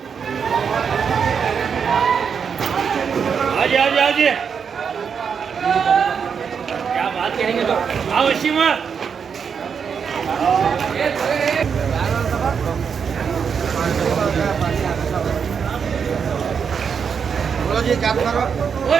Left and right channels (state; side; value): quieter; left; 6.6 dB